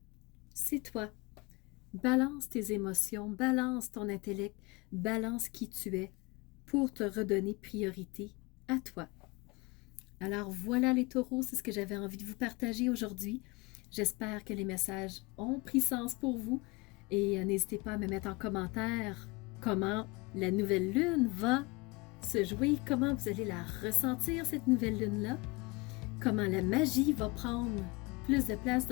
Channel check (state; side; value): quieter; right; 25.3 dB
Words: c'est toi. Balance tes émotions, balance ton intellect, balance qui tu es pour te redonner priorité à toi. Alors voilà les taureaux, c'est ce que j'avais envie de vous partager aujourd'hui. J'espère que les messages ont pris sens pour vous et n'hésitez pas à me mettre en commentaire comment la nouvelle lune va se jouer, comment vous allez la ressentir cette nouvelle lune-là, comment la magie va prendre plus de place